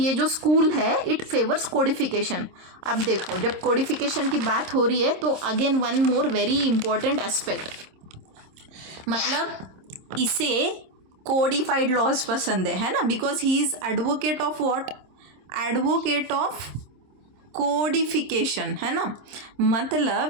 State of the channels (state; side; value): late; left; 26 ms